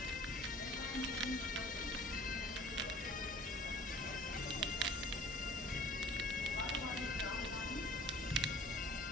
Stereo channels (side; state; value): both; normal; correlation 0.47